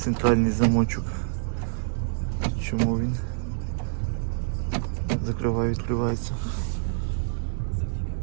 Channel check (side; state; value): left; silent; digital silence